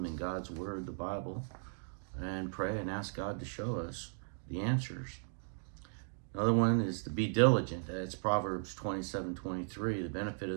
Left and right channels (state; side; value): silent; left; digital silence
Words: in God's Word, the Bible, and pray and ask God to show us the answers. Another one is to be diligent. That's Proverbs 27:23. The benefit of